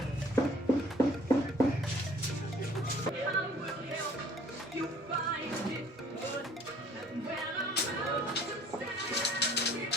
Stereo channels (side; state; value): both; normal; correlation 0.54